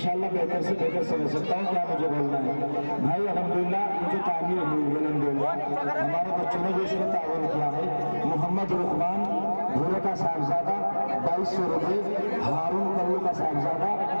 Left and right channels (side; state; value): both; inverted; correlation -1.00